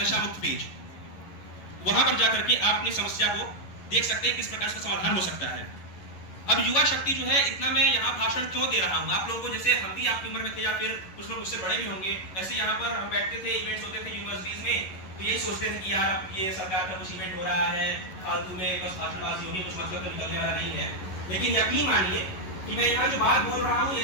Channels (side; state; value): right; late; 11 ms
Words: नशा मुक्त पेज। वहां पर जाकर के आप अपनी समस्या को देख सकते हैं किस प्रकार से समाधान हो सकता है। अब युवा शक्ति जो है, इतना मैं यहाँ भाषण क्यों दे रहा हूँ, आप लोगों को जैसे हम भी आपकी उम्र में थे या फिर कुछ लोग उससे बड़े भी होंगे, ऐसे यहाँ पर हम बैठते थे, इवेंट्स होते थे यूनिवर्सिटीज में, तो यही सोचते थे कि यार ये सरकार का कुछ इवेंट हो रहा है, फालतू में बस भाषणबाजी होगी, कुछ मतलब तो निकलने वाला नहीं है। लेकिन यकीन मानिए कि मैं यहाँ जो बात बोल रहा हूँ,